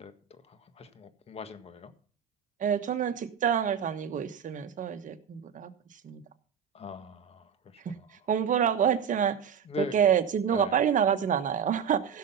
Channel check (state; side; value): quieter; left; 7.6 dB